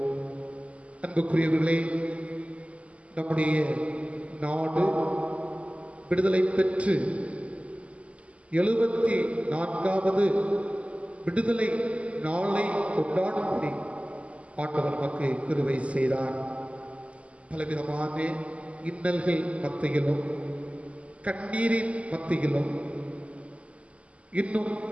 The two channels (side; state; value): left; late; 0.062 ms